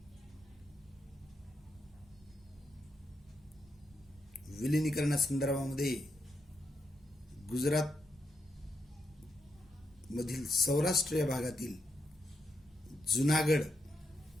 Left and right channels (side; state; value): both; normal; correlation 0.82